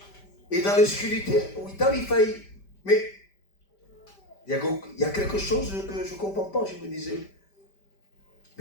Et dans l'obscurité, en Italie, il faillit. Mais il y a quelque chose que je ne comprends pas. Je me disais,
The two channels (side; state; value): right; late; 5.1 ms